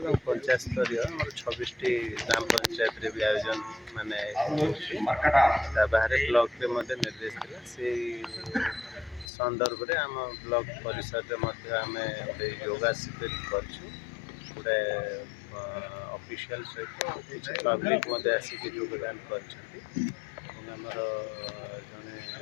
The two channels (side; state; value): right; drops out; at 9.2 s